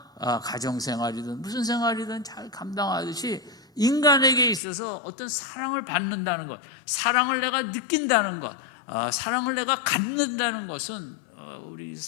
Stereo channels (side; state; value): right; drops out; at 4.6 s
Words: 가정생활이든 무슨 생활이든 잘 감당하듯이, 인간에게 있어서 어떤 사랑을 받는다는 것, 사랑을 내가 느낀다는 것, 사랑을 내가 갖는다는 것은 우리